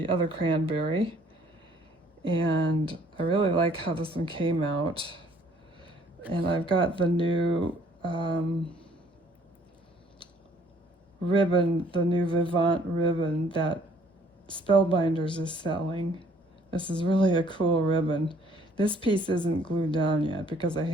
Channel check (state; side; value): normal; both; correlation 0.60